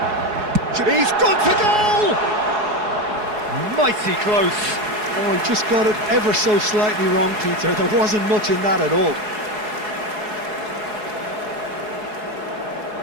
He's gone for goal! Mighty close. Oh, he just got it ever so slightly wrong, Peter. There wasn't much in that at all.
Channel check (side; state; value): left; late; 4.7 ms